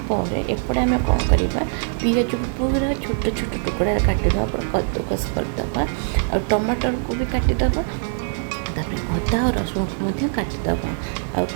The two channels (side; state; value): left; silent; 63 dB below the other